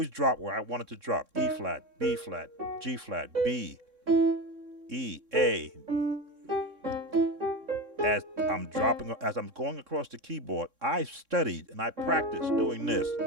drop where I want it to drop. E flat, B flat, G flat, B, E, A. As I'm going across the keyboard, I studied and I practiced doing this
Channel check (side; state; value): left; late; 3.6 ms